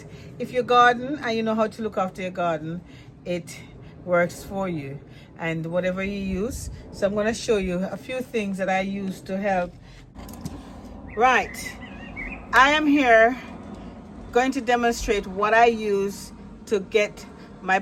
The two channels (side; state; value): both; identical; correlation 1.00